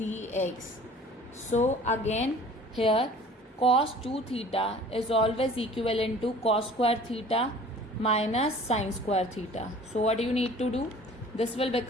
So again here cos 2 theta is always equivalent to cos square theta minus sine square theta. So what you need to do? This will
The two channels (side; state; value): both; normal; correlation 0.48